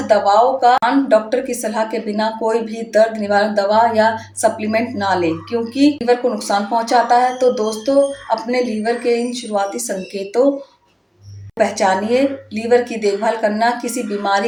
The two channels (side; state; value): both; identical; correlation 1.00